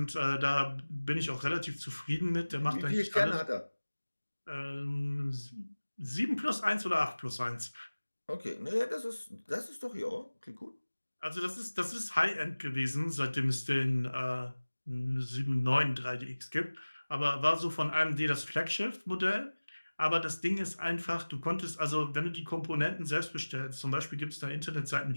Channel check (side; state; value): both; inverted; correlation -1.00